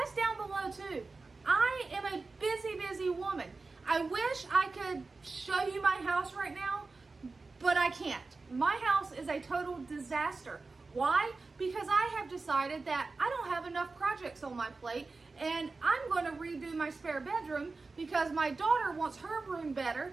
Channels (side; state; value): left; quieter; 3.9 dB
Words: down below too. I am a busy woman. I wish I could show you my house right now, but I can't. My house is a total disaster. Why? Because I have decided that I don't have enough projects on my plate, and I'm going to redo my spare bedroom because my daughter wants her room better,